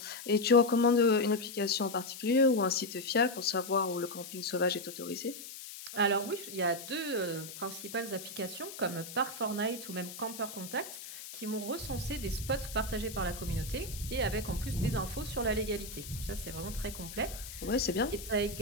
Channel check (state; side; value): noise; left; hiss, 12 dB below the sound